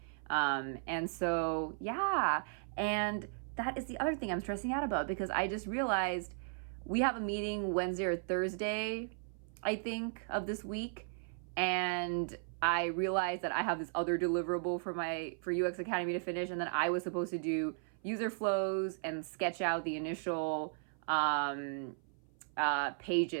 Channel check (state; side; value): silent; left; 54 dB below the other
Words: And so yeah, and that is the other thing I'm stressing out about, because I just realized we have a meeting Wednesday or Thursday, I think, of this week. And I realized that I have this other deliverable for UX Academy to finish, and then I was supposed to do user flows and sketch out the initial